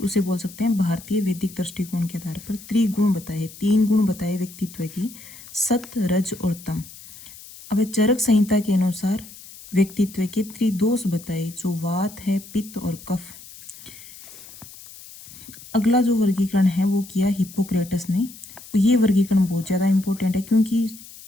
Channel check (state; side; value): noise; left; hiss, 18 dB below the sound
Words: उसे बोल सकते हैं भारतीय वैदिक दृष्टिकोण के आधार पर त्रिगुण बताए, 3 गुण बताए व्यक्तित्व की, सत, रज और तम। अब चरक संहिता के अनुसार व्यक्तित्व के त्रिदोष बताए, जो वात है, पित्त और कफ। अगला जो वर्गीकरण है वो किया हिप्पोक्रेटस ने। ये वर्गीकरण बहुत ज़्यादा इम्पोर्टेंट है क्योंकि